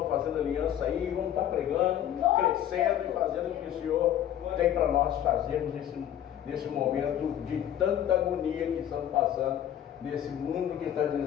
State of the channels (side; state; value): right; quieter; 10.9 dB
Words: fazendo aliança aí, vamos estar pregando, crescendo e fazendo o que o Senhor tem para nós fazermos nesse momento de tanta agonia que estamos passando, nesse mundo que está